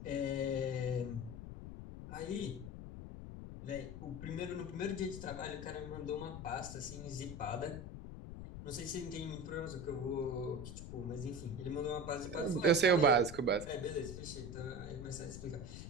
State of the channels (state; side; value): noise; left; rumble, 9 dB below the sound